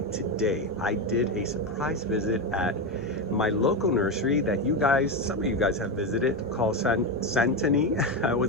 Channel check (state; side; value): normal; both; correlation 0.13